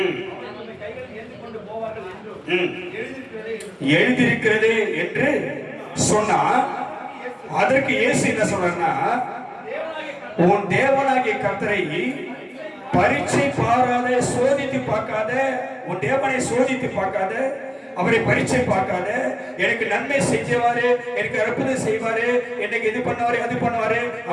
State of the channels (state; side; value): identical; both; correlation 1.00